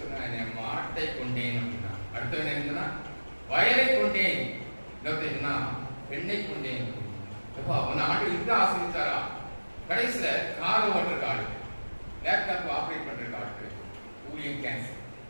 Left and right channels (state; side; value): inverted; both; correlation -1.00